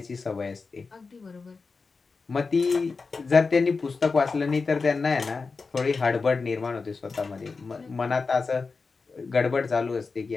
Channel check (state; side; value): quieter; right; 4.4 dB